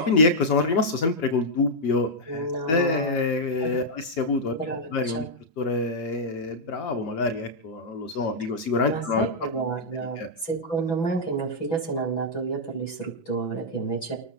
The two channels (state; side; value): late; right; 6.3 ms